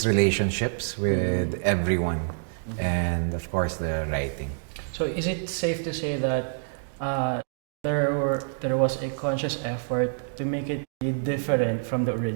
relationships with everyone, and of course the writing. So is it safe to say that there was a conscious effort to make it different from the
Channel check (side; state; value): left; silent; digital silence